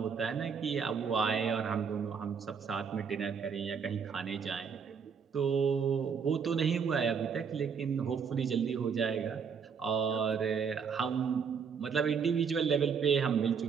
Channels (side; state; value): left; quieter; 6.4 dB